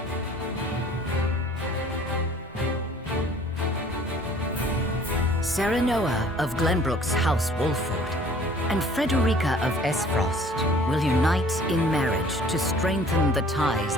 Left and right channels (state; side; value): normal; both; correlation 0.53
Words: Serenoa of Glenbrook's House Wolffort and Frederica of Esfrost will unite in marriage to strengthen the ties